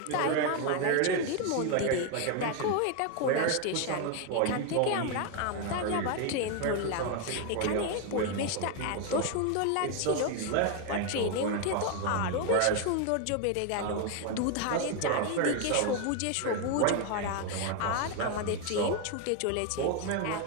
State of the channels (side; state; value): both; different; correlation 0.01